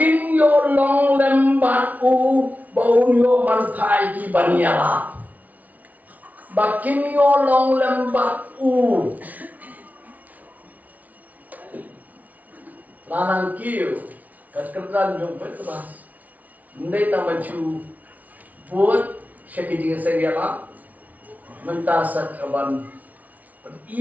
yo long lembat u bau yo bantai di banyala. Bakin yo long lembat u lanang kiu kerjaan jom petras. Ndai tamaju buat syakijing seriala mentasa kaban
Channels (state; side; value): late; left; 0.074 ms